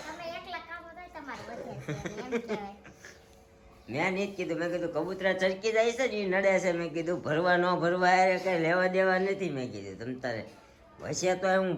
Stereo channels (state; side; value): identical; both; correlation 1.00